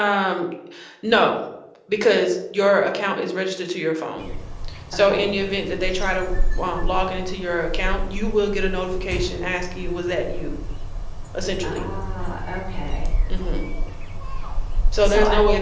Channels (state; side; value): identical; both; correlation 1.00